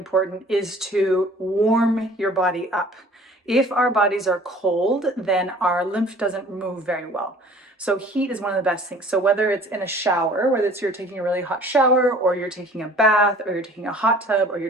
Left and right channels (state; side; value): normal; both; correlation 0.49